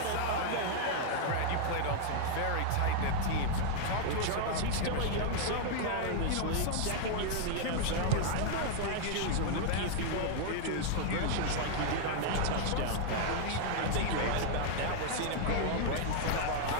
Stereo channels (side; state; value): both; different; correlation 0.00